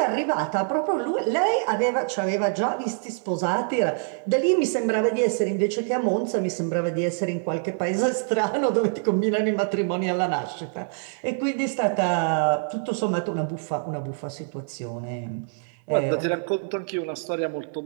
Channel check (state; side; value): silent; left; digital silence